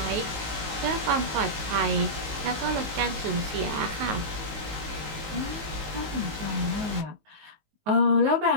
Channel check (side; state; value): left; late; 19 ms